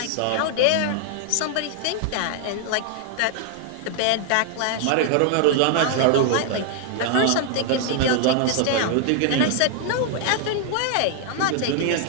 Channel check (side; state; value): both; different; correlation 0.00